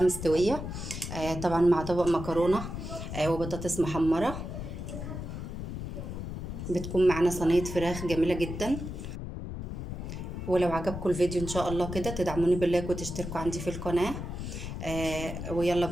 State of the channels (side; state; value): left; noise; rumble, 6 dB below the sound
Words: طبعا مع طبق مكرونة وبطاطس محمرة. بتكون معانا صينية فراخ جميلة جدا. ولو عجبكم الفيديو ان شاء الله كده تدعموني باللايك وتشتركوا عندي في القناة. ويلا